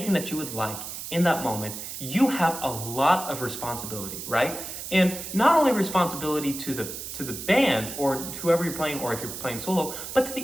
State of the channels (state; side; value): noise; right; hiss, 8 dB below the sound